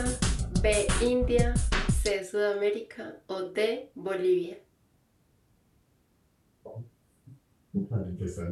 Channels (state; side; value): identical; both; correlation 1.00